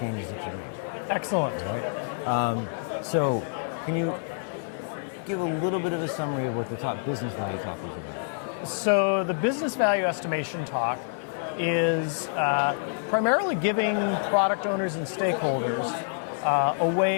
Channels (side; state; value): right; silent; 60 dB below the other